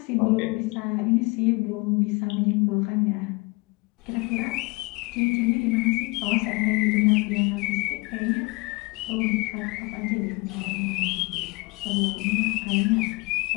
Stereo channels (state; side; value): quieter; right; 26.0 dB